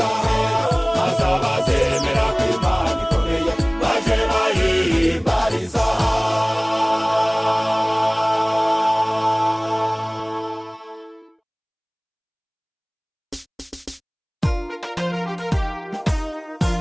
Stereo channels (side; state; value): both; identical; correlation 1.00